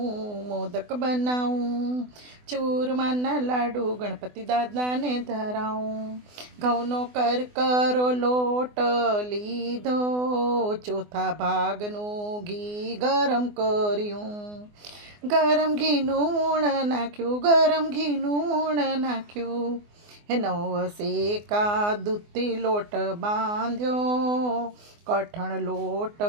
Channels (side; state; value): left; late; 24 ms